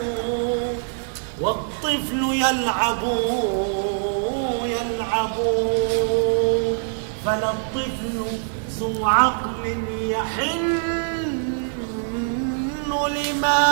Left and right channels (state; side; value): silent; left; 59 dB below the other